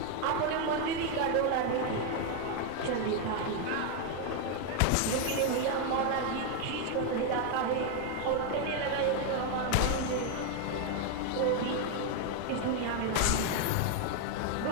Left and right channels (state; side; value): different; both; correlation 0.01